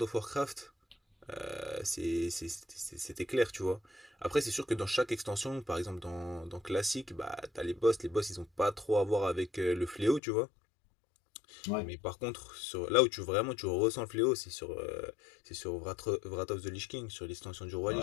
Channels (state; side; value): drops out; right; at 10.2 s